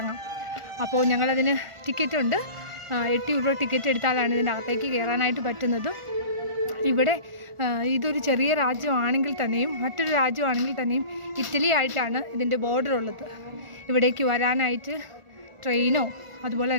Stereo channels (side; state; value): left; late; 1.4 ms